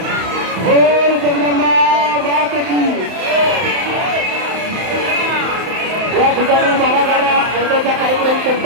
बोल जगदंबा माते की। या ठिकाणी 12 गाड्या होण्याचा कार्यक्रम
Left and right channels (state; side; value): late; left; 31 ms